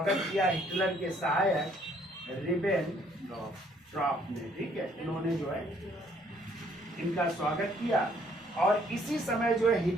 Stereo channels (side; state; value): both; normal; correlation 0.64